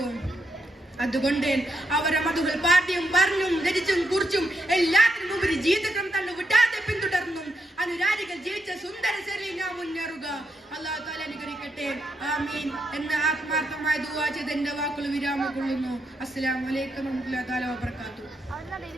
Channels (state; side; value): normal; both; correlation 0.81